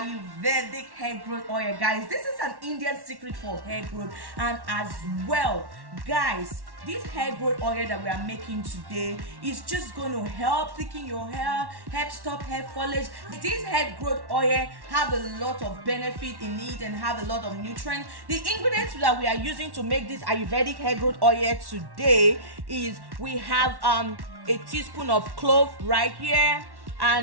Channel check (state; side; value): late; left; 1.1 ms